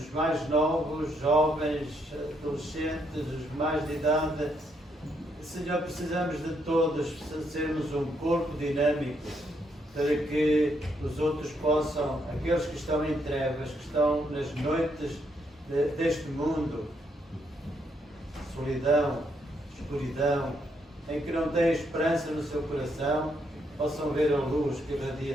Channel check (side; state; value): both; normal; correlation 0.75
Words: mais novos, jovens, adolescentes, os mais de idade, Senhor, precisamos de todos sermos um corpo dinâmico para que os outros possam, aqueles que estão em trevas, que estão nas noites deste mundo, solidão, escuridão, em que não têm esperança no seu coração, possam ver a luz que irradia